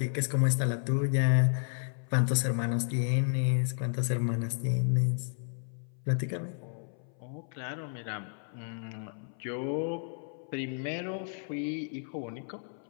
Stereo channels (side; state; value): right; silent; 56 dB below the other